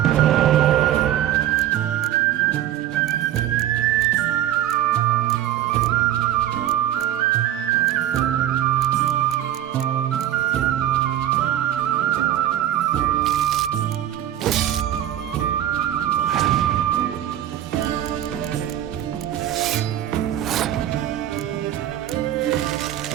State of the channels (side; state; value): left; quieter; 12.0 dB